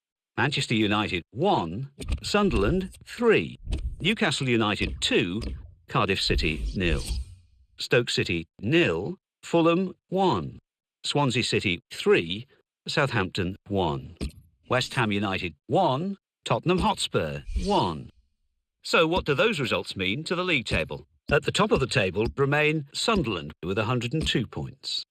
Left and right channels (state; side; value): identical; both; correlation 1.00